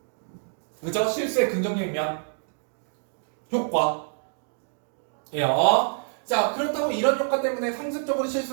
그죠? 실수의 긍정적인 면. 효과. 자, 그렇다고 이런 효과 때문에 상습적으로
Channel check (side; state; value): left; silent; digital silence